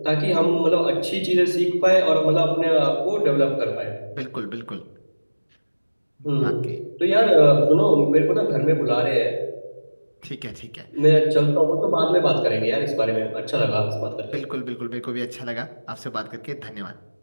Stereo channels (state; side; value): inverted; both; correlation -1.00